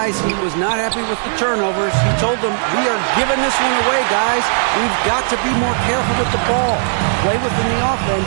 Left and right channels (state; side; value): silent; left; digital silence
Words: he was not happy with the turnovers. He told them, we are giving this one away, guys. We've got to be more careful with the ball, play within the